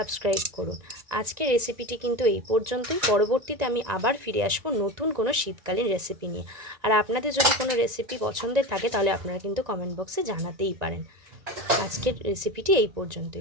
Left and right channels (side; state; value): left; late; 1.9 ms